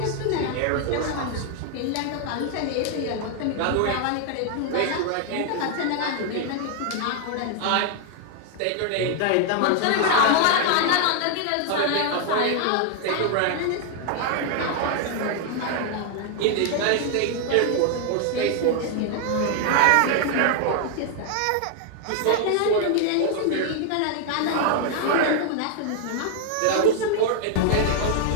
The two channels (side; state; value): both; different; correlation 0.00